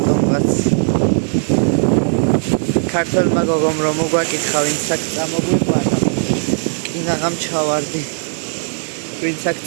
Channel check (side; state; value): left; silent; digital silence